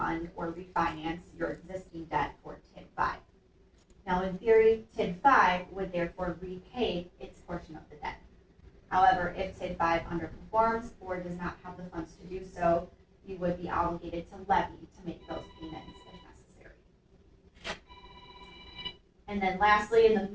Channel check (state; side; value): identical; both; correlation 1.00